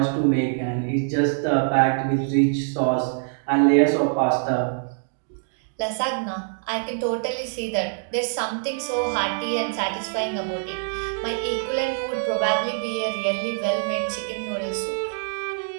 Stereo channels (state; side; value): silent; left; digital silence